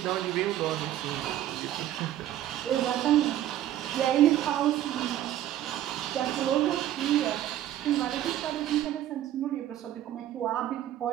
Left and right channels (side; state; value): left; quieter; 12.5 dB